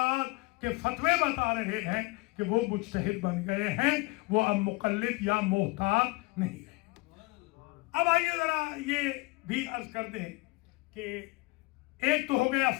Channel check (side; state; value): right; quieter; 24.4 dB